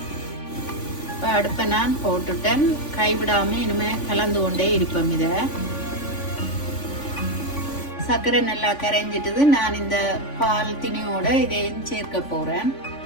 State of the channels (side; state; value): right; late; 3.5 ms